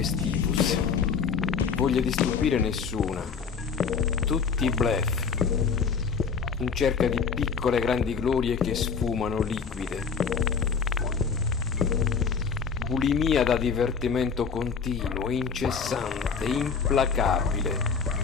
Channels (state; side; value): quieter; right; 5.9 dB